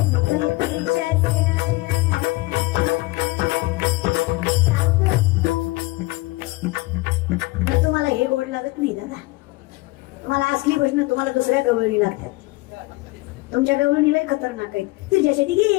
तुम्हाला हे गोड लागत नाही दादा. तुम्हाला असली भजनं तुम्हाला दुसऱ्या गवळणी लागतात. तुमच्या गवळणीला खतरनाक आहे. तुझ्यासाठी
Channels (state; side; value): quieter; right; 22.0 dB